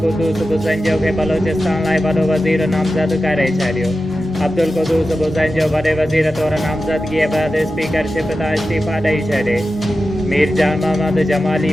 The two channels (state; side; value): normal; both; correlation 0.92